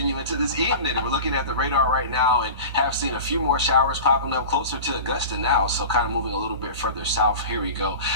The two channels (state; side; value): inverted; both; correlation -0.33